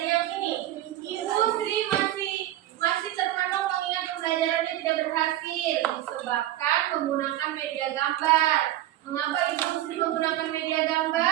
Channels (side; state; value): left; quieter; 13.9 dB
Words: ini. Industri masih terpenuh mengingat pembelajarannya tidak berhasil disebabkan menggunakan media gambar. Mengapa industri menggunakan media